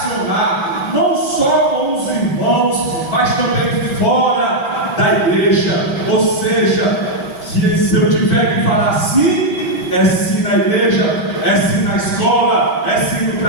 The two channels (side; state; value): right; late; 5.2 ms